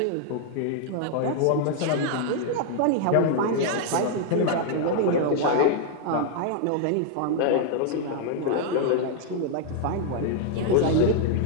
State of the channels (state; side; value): different; both; correlation 0.00